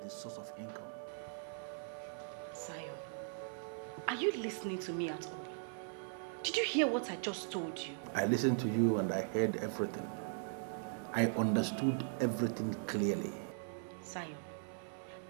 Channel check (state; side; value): silent; left; digital silence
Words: his source of income. Zion, are you listening to me at all? Did you hear what I just told you? I listened to you and I heard everything. I understood everything clearly. Zion,